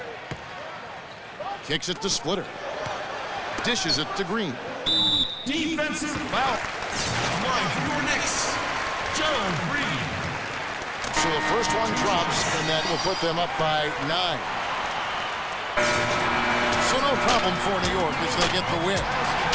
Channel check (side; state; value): both; identical; correlation 1.00